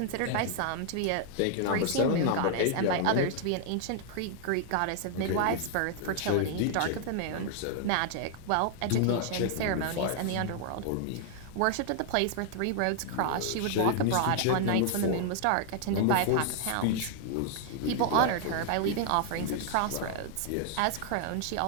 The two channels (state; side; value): different; both; correlation 0.00